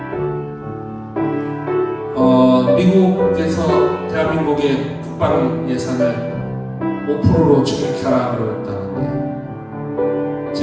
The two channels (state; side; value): identical; both; correlation 1.00